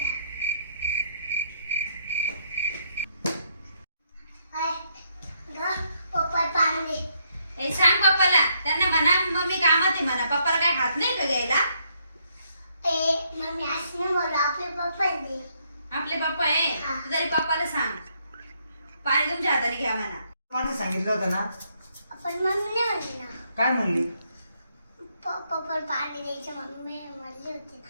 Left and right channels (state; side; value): inverted; both; correlation -0.73